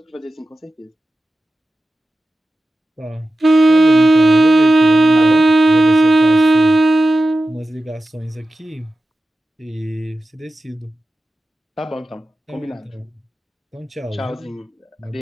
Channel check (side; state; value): both; normal; correlation 0.93